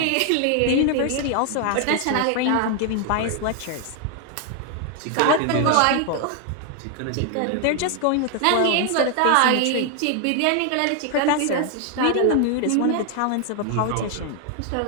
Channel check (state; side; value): different; both; correlation 0.00